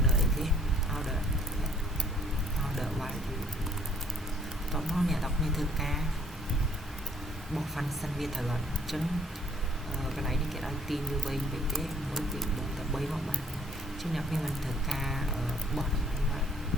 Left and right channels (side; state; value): both; normal; correlation 0.61